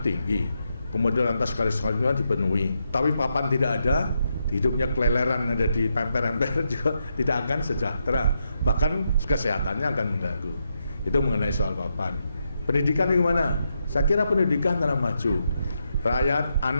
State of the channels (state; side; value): inverted; both; correlation -0.82